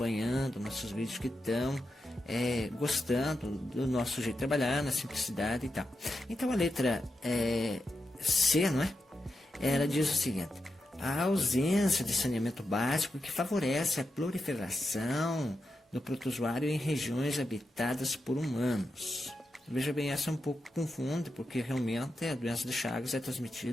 nossos vídeos, que estão gostando do nosso jeito de trabalhar, na simplicidade e tal. Então a letra C, não é? Ela diz o seguinte: a ausência de saneamento básico que favorece a proliferação do protozoário em regiões habitadas por humanos. Veja bem, essa um pouco confunde, porque realmente a doença de Chagas é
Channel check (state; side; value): normal; both; correlation 0.87